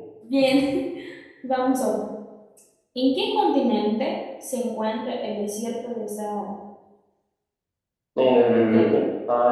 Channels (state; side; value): identical; both; correlation 1.00